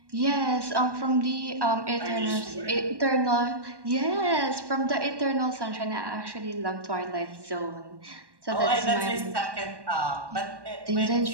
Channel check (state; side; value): late; left; 1.1 ms